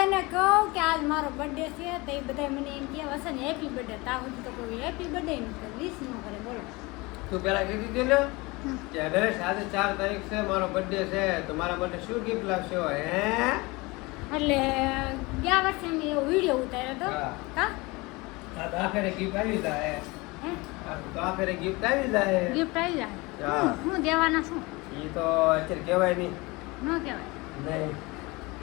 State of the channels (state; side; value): quieter; right; 24.1 dB